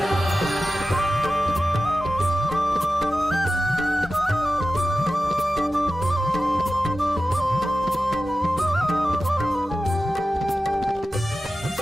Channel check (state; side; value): normal; both; correlation 0.94